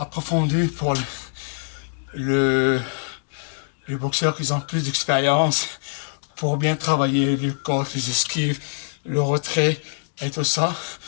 pour les boxeurs qui ont plus d'expérience, pour bien travailler le corps, les esquives, le retrait et tout ça.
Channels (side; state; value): right; silent; digital silence